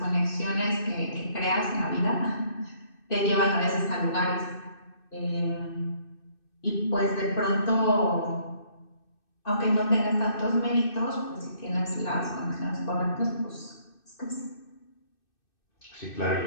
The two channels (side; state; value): right; late; 2.6 ms